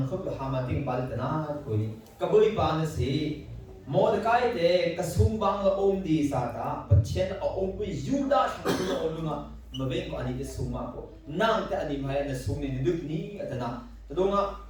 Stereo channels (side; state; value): both; identical; correlation 1.00